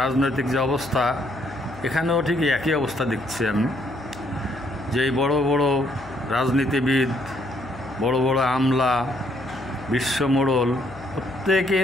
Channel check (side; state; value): left; noise; hum, 19 dB below the sound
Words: রাজনৈতিক যে অবস্থা, এখানেও ঠিক একই অবস্থা দেখছি আমি। যে বড় বড় রাজনীতিবিদ, বড় বড় আমলা, বিশ্বমোড়ল,